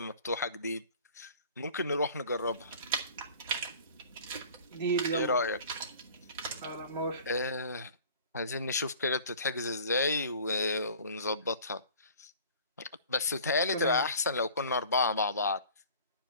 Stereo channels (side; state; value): both; inverted; correlation -0.46